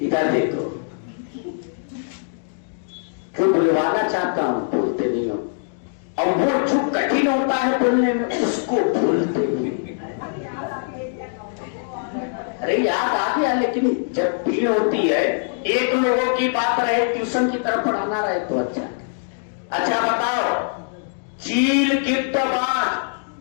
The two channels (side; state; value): right; silent; digital silence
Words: इधर देखो, क्यों बुलवाना चाहता हूं, बोलते नहीं हो। और वो जो कठिन होता है बोलने में, उसको भूलते नहीं। अरे याद आ गया, लेकिन जब भीड़ होती है, एक लोगों की बात रहे, ट्यूशन की तरफ पढ़ाना रहे तो अच्छा बताओ, चील गिद्ध बाज,